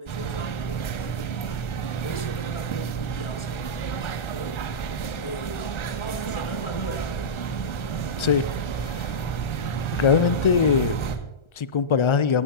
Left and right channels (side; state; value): right; late; 1.3 ms